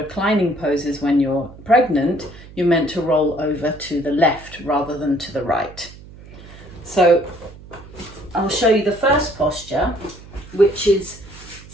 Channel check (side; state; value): right; noise; hum, 19 dB below the sound